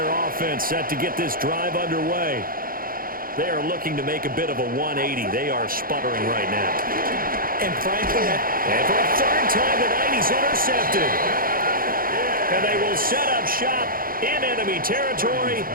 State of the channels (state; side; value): late; left; 0.42 ms